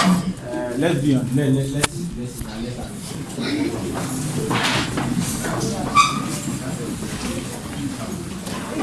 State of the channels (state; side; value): identical; both; correlation 1.00